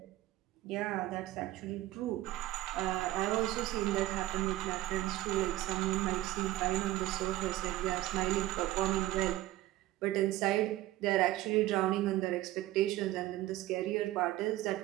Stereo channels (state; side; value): quieter; left; 16.0 dB